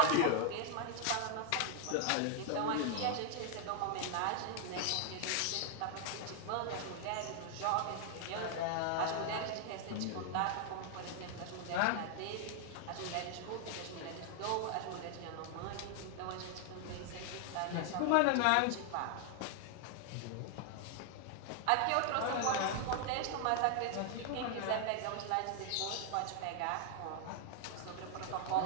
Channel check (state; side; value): different; both; correlation 0.00